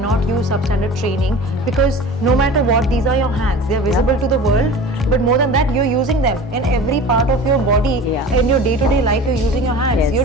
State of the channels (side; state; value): both; normal; correlation 0.38